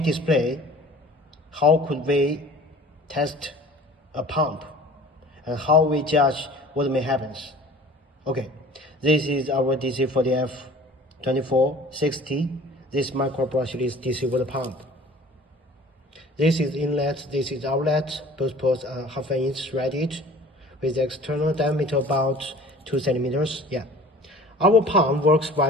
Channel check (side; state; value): both; normal; correlation 0.46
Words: how could we test a pump and how we judge what may happen. Okay, this is our DC40F-2460, this micro brushless DC water pump. This is inlet, this is outlet, both ports are ½ inch threaded with the external diameter about 2 centimeters. Yeah. Our pump works